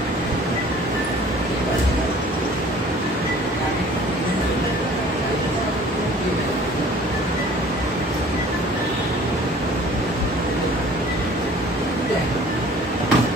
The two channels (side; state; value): both; normal; correlation 0.50